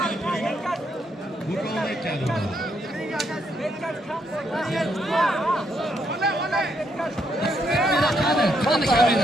Bu polvon ekan. Qani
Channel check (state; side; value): normal; both; correlation 0.76